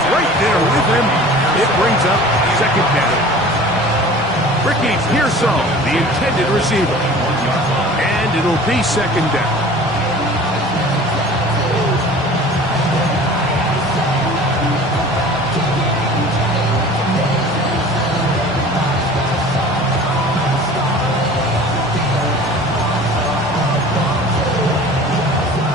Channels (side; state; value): both; normal; correlation 0.43